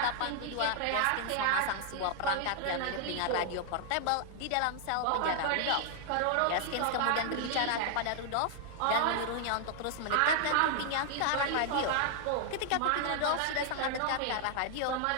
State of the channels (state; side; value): different; both; correlation 0.00